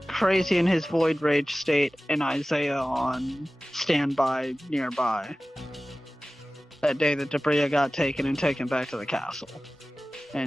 Crazy in his Void Rage state, and Isaiah on standby nearby. That day that Debria got taken and taken back to the castle.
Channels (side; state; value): both; normal; correlation 0.97